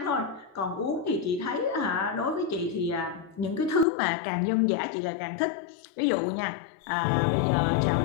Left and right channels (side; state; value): right; drops out; at 3.9 s